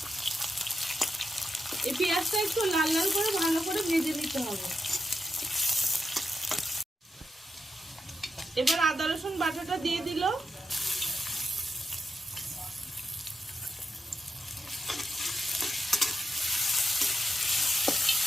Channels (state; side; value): normal; both; correlation 0.86